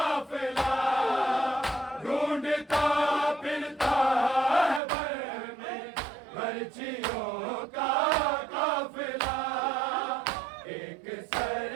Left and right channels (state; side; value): drops out; left; at 4.8 s